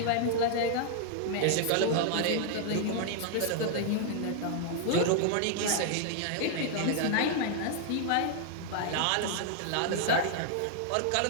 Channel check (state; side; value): different; both; correlation -0.01